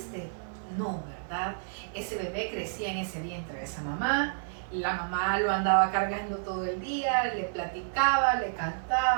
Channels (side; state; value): left; silent; digital silence